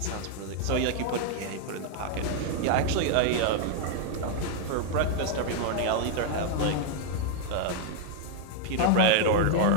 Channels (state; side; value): different; both; correlation 0.00